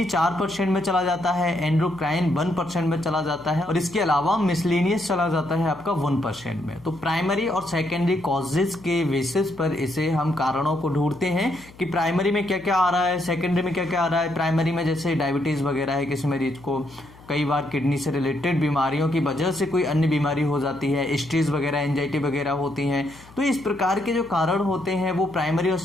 4% में चला जाता है, एंडोक्राइन 1% में चला जाता है और इसके अलावा मिसलेनियस चला जाता है आपका 1% में। तो प्राइमरी और सेकेंडरी कॉजेज के बेसिस पर इसे हम कारणों को ढूंढते हैं कि प्राइमरी में क्या क्या आ रहा है, सेकेंडरी में क्या क्या आ रहा है। प्राइमरी में जैसे डायबिटीज वगैरह है किसी मरीज को, कई बार किडनी से रिलेटेड बीमारियों की वजह से कोई अन्य बीमारी हो जाती है, स्ट्रेस वगैरह, एंजाइटी वगैरह होती हैं। तो इस प्रकार के जो कारण होते हैं वो प्राइमरी और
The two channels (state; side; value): noise; left; hum, 23 dB below the sound